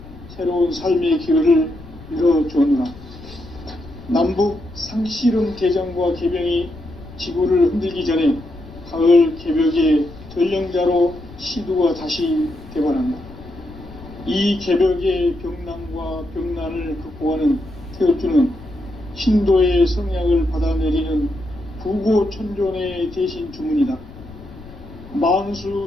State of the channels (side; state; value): left; noise; rumble, 17 dB below the sound